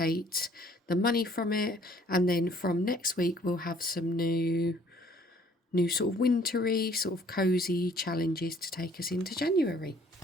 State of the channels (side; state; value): both; normal; correlation 0.59